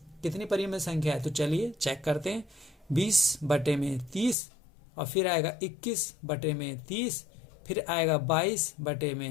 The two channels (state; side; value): drops out; right; at 4.4 s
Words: कितनी परिमेय संख्या है। तो चलिए चेक करते हैं। 20/30 और फिर आएगा 21/30, फिर आएगा